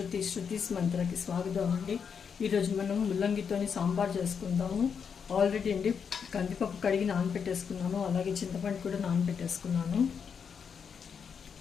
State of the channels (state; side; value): quieter; right; 6.7 dB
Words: శృతిస్ మంత్రకి స్వాగతం అండి. ఈరోజు మనం ముల్లంగితో సాంబార్ చేసుకుందాము. ఆల్రెడీ అండి కందిపప్పు కడిగి నానబెట్టేసుకున్నాను, అలాగే చింతపండు కూడా నానబెట్టేసుకున్నాను.